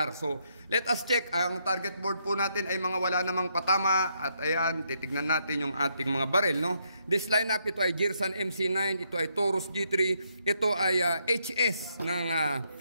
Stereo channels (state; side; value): inverted; both; correlation -0.76